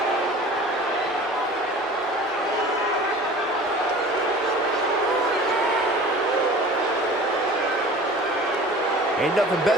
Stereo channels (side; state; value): both; normal; correlation 0.42